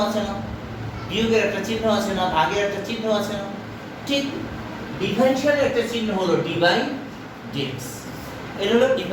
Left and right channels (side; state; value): both; identical; correlation 1.00